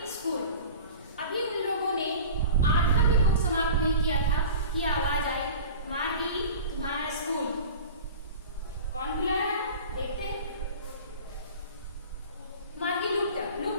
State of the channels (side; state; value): both; inverted; correlation -0.38